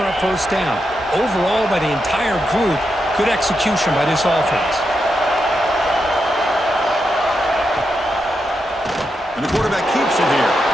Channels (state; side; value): normal; both; correlation 0.85